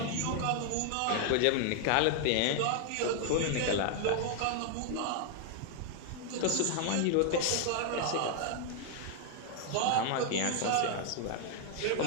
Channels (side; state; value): both; different; correlation 0.00